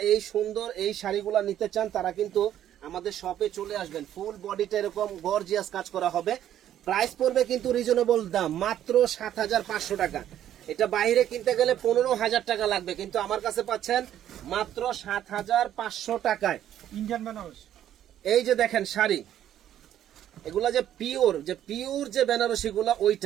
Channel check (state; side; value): quieter; left; 11.2 dB